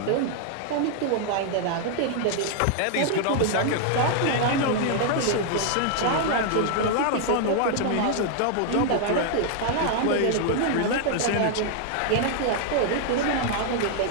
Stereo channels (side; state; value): both; different; correlation 0.00